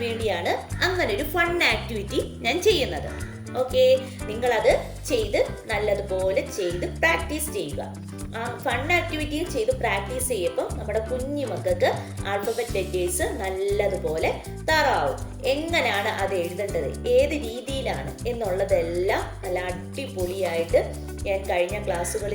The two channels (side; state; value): both; identical; correlation 1.00